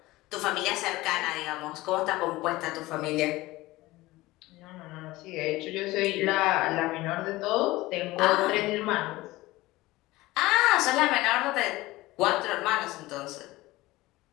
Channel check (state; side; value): quieter; right; 19.0 dB